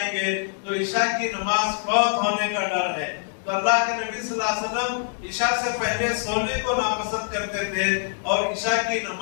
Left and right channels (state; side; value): silent; right; digital silence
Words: گے تو عشاء کی نماز فوت ہونے کا ڈر ہے. تو اللہ کے نبی صلی اللہ علیہ وسلم عشاء سے پہلے سونے کو ناپسند کرتے تھے اور عشاء کی